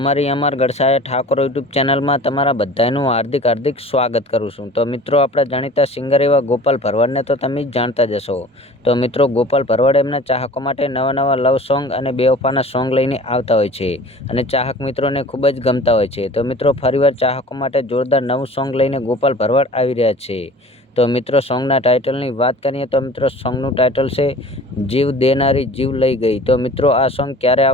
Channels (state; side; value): normal; both; correlation 0.43